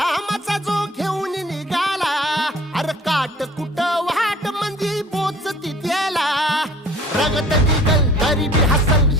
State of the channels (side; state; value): both; normal; correlation 0.50